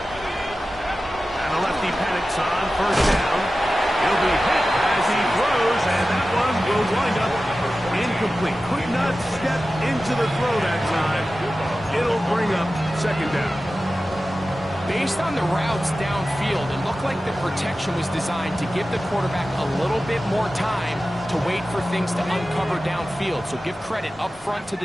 Simply could not step into the throw that time. It'll bring up second down. Based on the routes downfield, it looked like the protection was designed to give the quarterback a little bit more time to wait for things to uncover downfield. So give credit up front to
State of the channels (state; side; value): normal; both; correlation 0.95